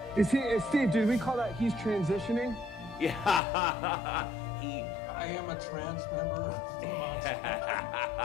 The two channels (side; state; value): right; drops out; at 3.4 s